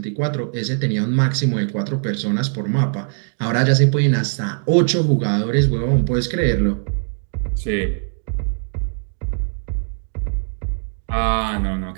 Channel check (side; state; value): left; silent; 65 dB below the other